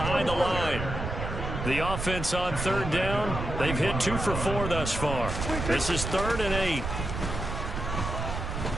the line. The offense on 3rd down, they've hit 2 for 4 thus far. This is 3rd and 8.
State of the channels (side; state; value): right; noise; rumble, 4 dB below the sound